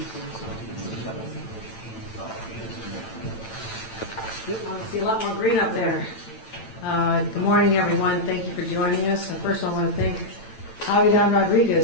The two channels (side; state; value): right; late; 8.9 ms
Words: see a lot more green up there. Good morning, everyone. Thank you for joining us. First, I want to thank Javier